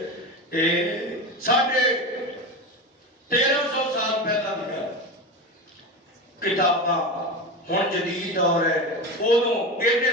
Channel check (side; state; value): both; normal; correlation 0.23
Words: 1350 سال پہلا لکھا کتاباں، ہن جدید دور ہے، ادوں ایڈے